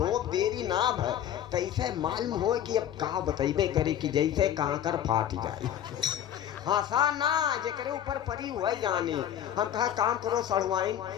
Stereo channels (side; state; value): right; quieter; 10.5 dB